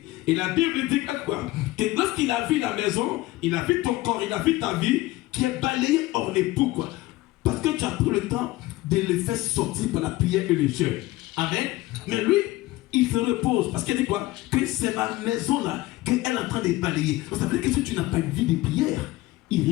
Et la Bible dit quoi? Que lorsqu'il a vu la maison, il a vu ton corps, il a vu ta vie, qui est balayée hors les poux, quoi. Parce que tu as pris le temps de le faire sortir par la prière et le jeûne. Amen. Mais lui, il se repose. Parce qu'il dit quoi? Que c'est ma maison là, qu'elle est en train de balayer. Donc ça veut dire que si tu n'as pas une vie de prière, il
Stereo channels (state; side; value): quieter; right; 18.3 dB